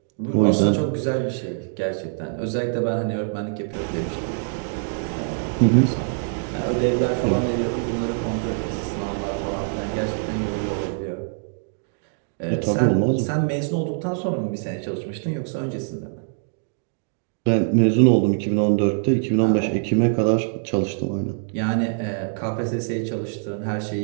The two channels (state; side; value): silent; left; digital silence